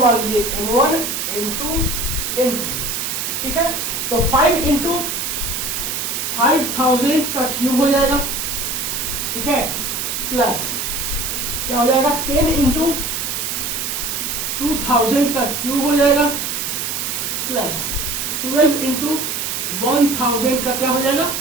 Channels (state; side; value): noise; right; hiss, 2 dB below the sound